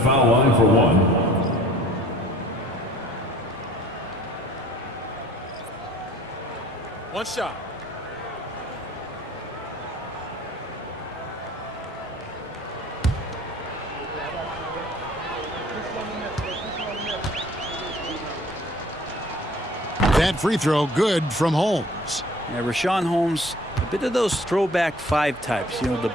line for 1. One shot. That free throw good from Holmes. Yeah, Richaun Holmes, a bit of those throwback 5 types. You know, the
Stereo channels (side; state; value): both; normal; correlation 0.52